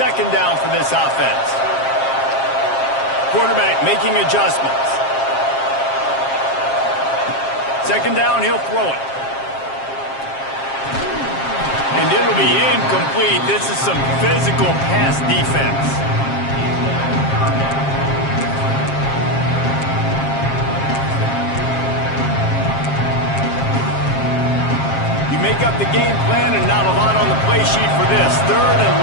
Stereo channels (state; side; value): late; right; 7.5 ms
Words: down for this offense. Quarterback making adjustments. 2nd down, he'll throw it. And it'll be incomplete. This is some physical pass defense. Make up the game plan and not a lot on the play sheet for this. 3rd and